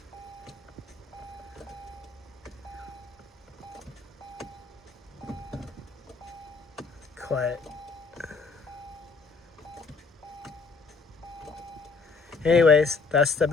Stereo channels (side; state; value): right; quieter; 4.5 dB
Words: Quiet. Anyways, that's the